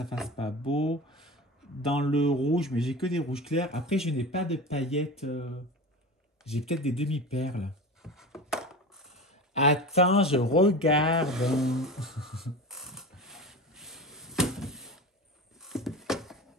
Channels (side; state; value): both; normal; correlation 0.30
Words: fasse pas beau. Dans le rouge, mais j'ai que des rouges clairs. Après, je n'ai pas de paillettes. J'ai peut-être des demi-perles. Attends, je regarde.